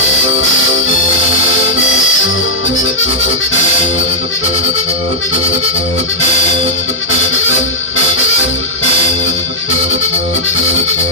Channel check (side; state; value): both; normal; correlation -0.08